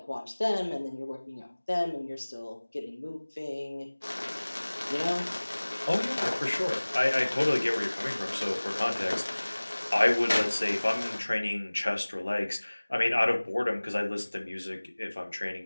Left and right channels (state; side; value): inverted; both; correlation -1.00